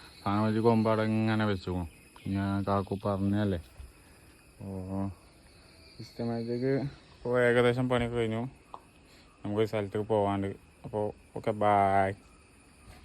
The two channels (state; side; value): identical; both; correlation 1.00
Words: സാധനം വെച്ച് കൊമ്പാടെ ഇങ്ങനെ വെച്ചുക്കണു. ഞാൻ കാക്കു പറഞ്ഞല്ലേ. അപ്പോൾ സിസ്റ്റമാറ്റിക് ഇപ്പോൾ ഏകദേശം പണിയൊക്കെ കഴിഞ്ഞു. നമുക്കൊരു സ്ഥലത്തേക്ക് പോകാണ്ട്. അപ്പോൾ ഓക്കെ, ബായ്.